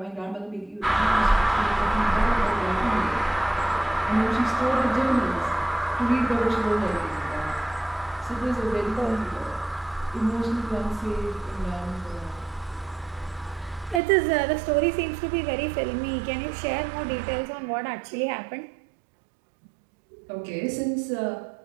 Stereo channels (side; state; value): left; drops out; at 14.0 s